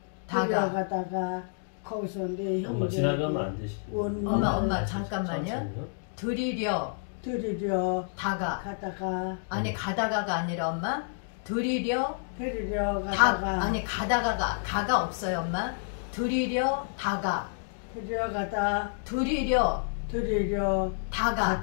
거기서 내 엄마 형제 지나가면 안 되시. 엄마 잠깐만요. 드리려 가다가 아니 가다가가 아니라 엄마 드리려 가다가 아니 가가 없어요 엄마. 드리려 다가 드리려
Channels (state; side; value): silent; right; digital silence